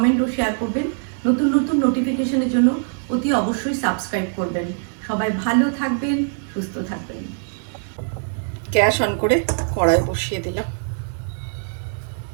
ও শেয়ার করবেন। নতুন নতুন নোটিফিকেশনের জন্য অতি অবশ্যই সাবস্ক্রাইব করবেন। সবাই ভালো থাকবেন, সুস্থ থাকবেন। গ্যাস অন করে কড়াই বসিয়ে দিলাম।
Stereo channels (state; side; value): silent; left; digital silence